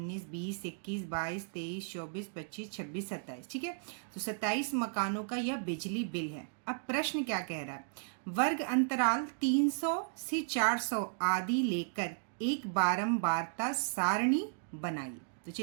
20 21 22 23 24 25 26 27। ठीक है, तो 27 मकानों का यह बिजली बिल है। अब प्रश्न क्या कह रहा है, वर्ग अंतराल 300 से 400 आदि लेकर एक बारंबारता सारणी बनाइए। तो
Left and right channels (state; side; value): silent; left; digital silence